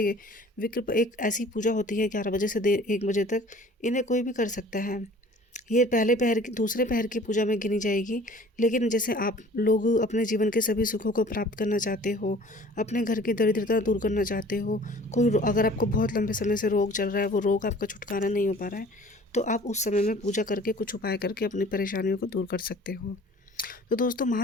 एक ऐसी पूजा होती है 11 बजे से 1 बजे तक, इन्हें कोई भी कर सकता है। ये पहले पहर की, दूसरे पहर की पूजा में गिनी जाएगी। लेकिन जैसे आप लोग अपने जीवन के सभी सुखों को प्राप्त करना चाहते हो, अपने घर की दरिद्रता दूर करना चाहते हो, अगर आपको बहुत लंबे समय से रोग चल रहा है, वो रोग आपका छुटकारा नहीं हो पा रहा है, तो आप उस समय में पूजा करके, कुछ उपाय करके अपनी परेशानियों को दूर कर सकते हो। तो दोस्तों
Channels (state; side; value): normal; both; correlation 0.48